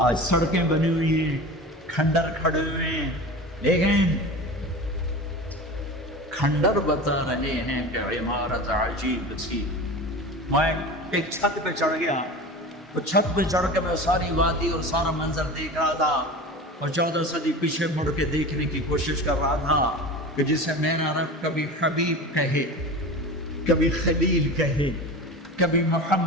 آج سڑکیں بنی ہوئی ہیں، کھنڈر کھڑے ہوئے ہیں، لیکن کھنڈر بتا رہے ہیں کہ عمارت عجیب تھی۔ میں ایک چھت پہ چڑھ گیا، وہ چھت پہ چڑھ کے میں ساری وادی اور سارا منظر دیکھ رہا تھا اور 14 صدی پیچھے مڑ کے دیکھنے کی کوشش کر رہا تھا کہ جسے میرا رب کبھی حبیب کہے، کبھی خلیل کہے، کبھی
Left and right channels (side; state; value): both; normal; correlation 0.32